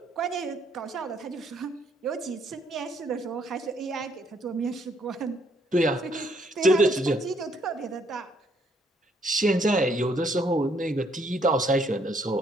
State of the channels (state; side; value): normal; both; correlation 0.69